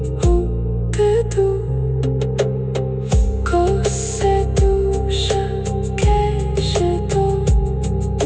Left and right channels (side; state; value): both; identical; correlation 1.00